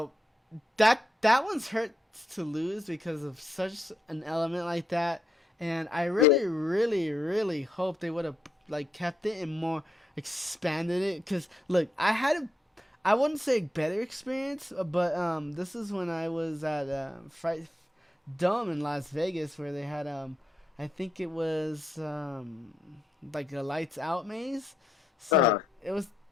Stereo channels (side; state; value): both; normal; correlation 0.81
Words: that one's hurt to lose because of such an element like that, and I yeah. really, really, really hope they would have like kept it and more expanded it. Cause look, I wouldn't say better experience, but this is when I was at Fright Dome in Las Vegas where they had I think it was like a lights out maze. So Uh, it was